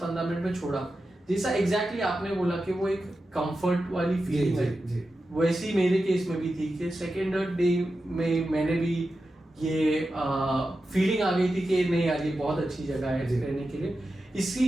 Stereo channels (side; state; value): both; normal; correlation 0.91